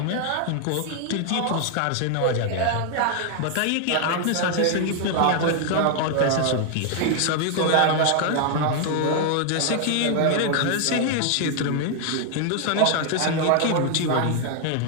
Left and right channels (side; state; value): both; different; correlation 0.00